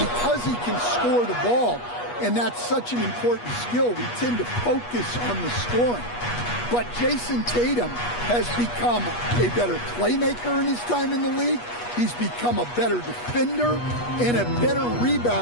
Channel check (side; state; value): right; late; 8.3 ms